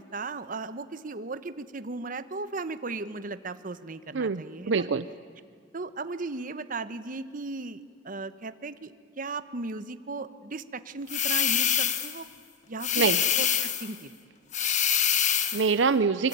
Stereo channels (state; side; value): normal; both; correlation 0.04